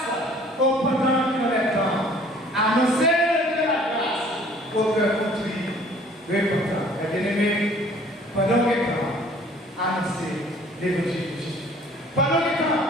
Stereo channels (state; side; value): normal; both; correlation 0.54